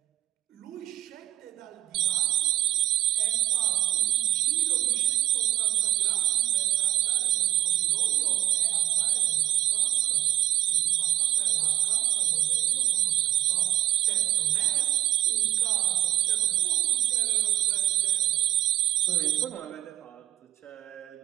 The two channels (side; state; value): left; quieter; 12.6 dB